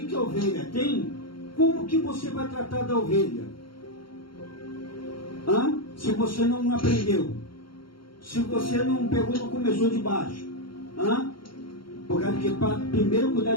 a ovelha tem, como que você vai tratar da ovelha? Se você não aprendeu, se você não pegou, não começou de baixo, porque para primeiro cuidar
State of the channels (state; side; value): late; right; 0.73 ms